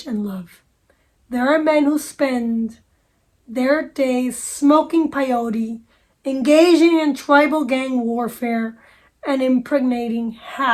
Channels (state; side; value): identical; both; correlation 1.00